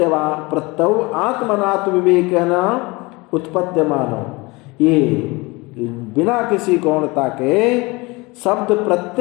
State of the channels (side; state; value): right; quieter; 24.5 dB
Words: आत्मनात्म विवेकेन उत्पद्यमानो, ये बिना किसी गौणता के शब्द